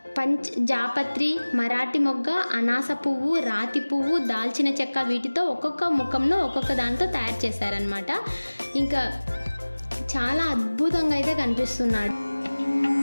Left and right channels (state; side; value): inverted; both; correlation -1.00